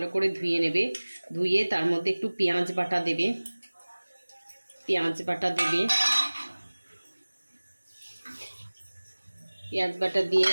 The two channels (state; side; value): inverted; both; correlation -1.00